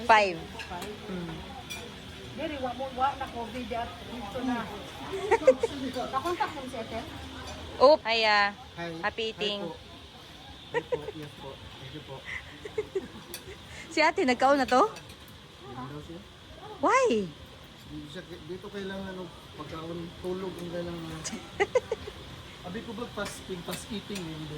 5. Diri wa na COVID at dito na. Nakontak mo si Ethel? Oh, hiya. Happy eating. Hi po. Yes po. Thank you po. Si ate, nagkaon na to? Why? Dito kailangan ng pagkaon, tulog ang kailangan. Abi ko ba fasting, fast eating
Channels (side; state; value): both; identical; correlation 1.00